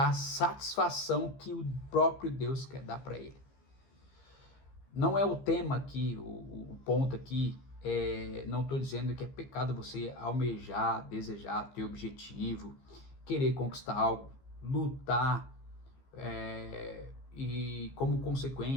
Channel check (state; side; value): late; right; 15 ms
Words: a satisfação que o próprio Deus quer dar para ele. Não é o tema aqui, o ponto aqui não estou dizendo que é pecado você almejar, desejar, ter objetivo, querer conquistar algo, lutar, e como